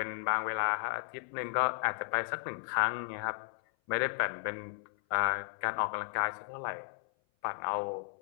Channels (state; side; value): silent; right; 55 dB below the other